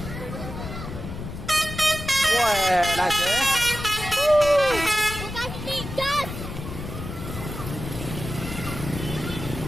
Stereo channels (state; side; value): noise; left; rumble, 8 dB below the sound